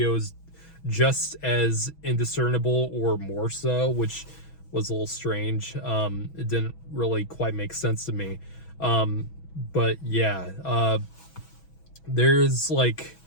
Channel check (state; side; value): late; right; 6.1 ms